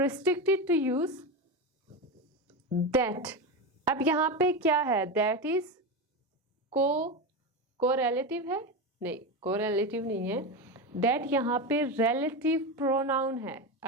to use that। अब यहाँ पे क्या है, that is co-relative है, नहीं कोरिलेटिव नहीं है, दैट यहाँ पे रिलेटिव प्रोनाउन है।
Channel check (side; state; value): both; normal; correlation 0.17